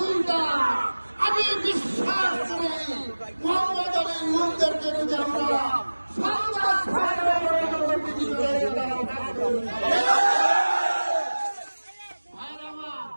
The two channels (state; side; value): inverted; both; correlation -1.00